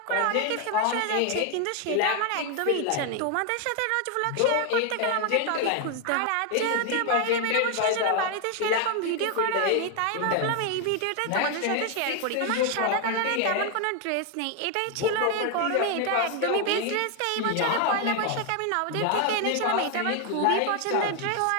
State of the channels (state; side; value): different; both; correlation 0.00